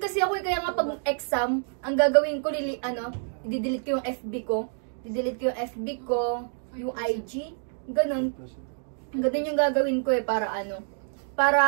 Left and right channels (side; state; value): left; silent; 60 dB below the other